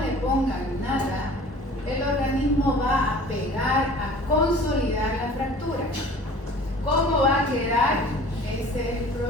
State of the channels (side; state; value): both; normal; correlation 0.46